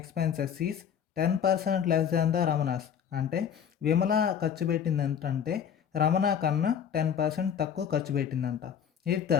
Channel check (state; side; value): quieter; right; 8.2 dB